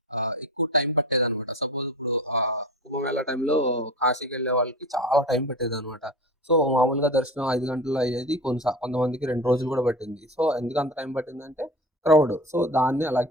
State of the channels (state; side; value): normal; both; correlation 0.33